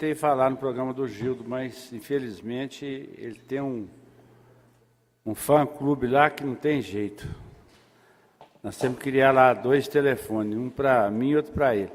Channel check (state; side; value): identical; both; correlation 1.00